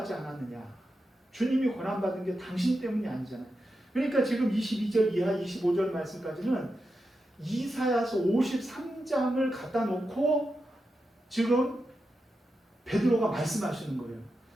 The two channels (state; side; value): normal; both; correlation 0.89